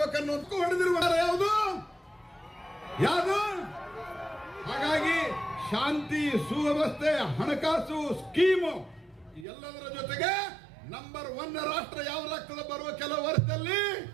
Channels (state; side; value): drops out; left; at 9.5 s